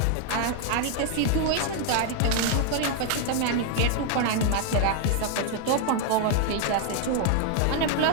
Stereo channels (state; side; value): different; both; correlation 0.00